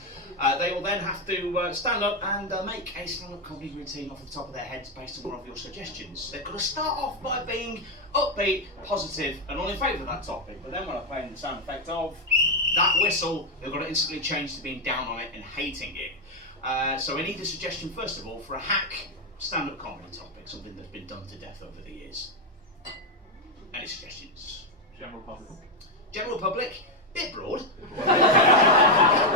They will then have to stand up and make a stand-up comedy routine off the top of their heads based on one of your suggestions. They've got to start off by being upbeat, positive, and all in favour of that topic. But then when I play in the sound effect of that whistle, they've got to instantly change to being down on it and hating it. So I need a suggestion, first of all, for a hack stand-up comedy topic, something that's been done to death over the years. Any suggestions? General public. General public, bit broad.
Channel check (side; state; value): both; normal; correlation 0.04